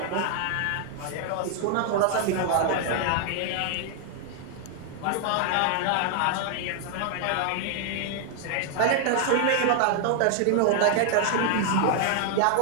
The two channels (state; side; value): different; both; correlation 0.00